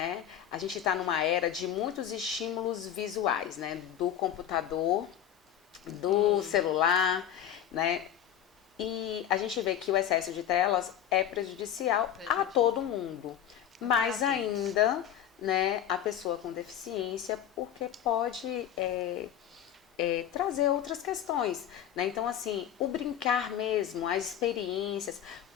A gente está numa era de muitos estímulos visuais, né? Do computador, do celular, né? E a gente vê que o excesso de telas é prejudicial a todo mundo, mais ainda, né, a pessoa com deficiência, porque pode trazer outras questões, né? Então, assim, o brincar mesmo, as experiências,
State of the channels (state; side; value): quieter; right; 10.2 dB